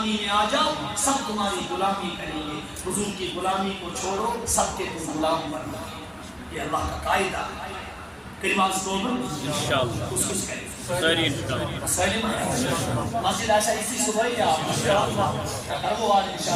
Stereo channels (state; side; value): identical; both; correlation 1.00